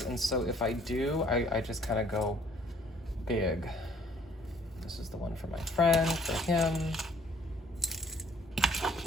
and so if I do, I just kind of go big. This is the one for my friend, for him.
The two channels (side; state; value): both; normal; correlation 0.59